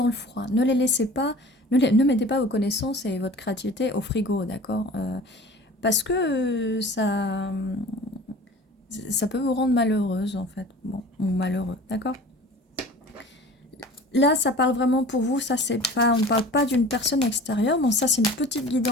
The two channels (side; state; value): both; normal; correlation 0.42